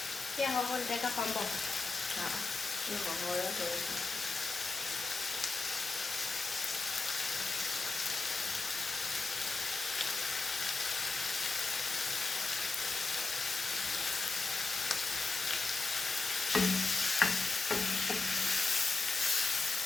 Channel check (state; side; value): quieter; right; 3.9 dB